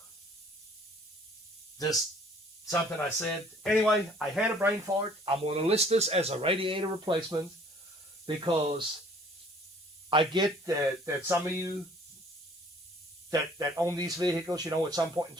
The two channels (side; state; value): both; normal; correlation 0.56